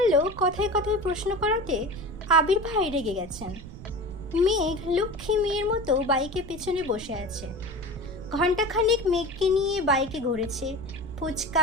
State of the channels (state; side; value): noise; right; rumble, 14 dB below the sound